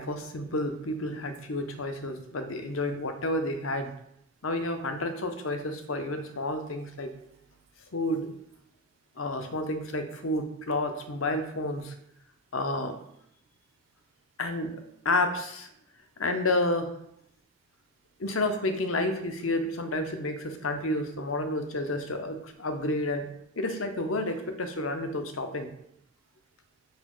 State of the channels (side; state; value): both; normal; correlation 0.06